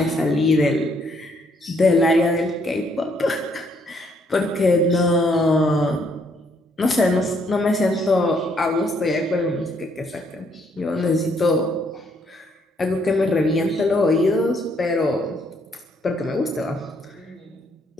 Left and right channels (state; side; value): normal; both; correlation 0.70